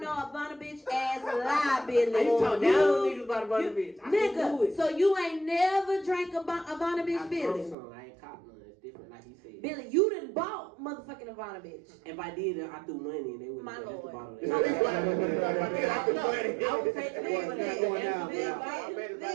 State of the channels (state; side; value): drops out; left; at 7.8 s